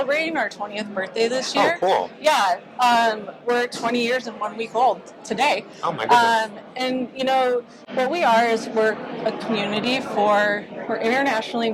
our 20th birthday this year. Oh, cool. Yeah, we're 20 years and 1 week old today. Oh, my goodness. And, you know, what we are is we're a community we're internationally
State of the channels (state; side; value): identical; both; correlation 1.00